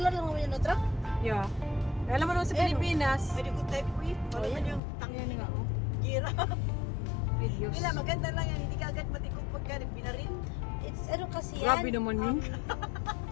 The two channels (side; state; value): right; drops out; at 4.8 s